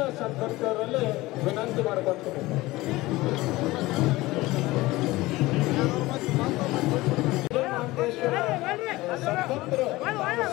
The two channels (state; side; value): quieter; right; 19.4 dB